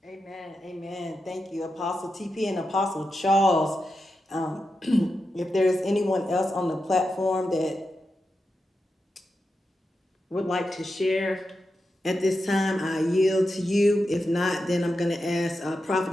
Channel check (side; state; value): both; normal; correlation 0.89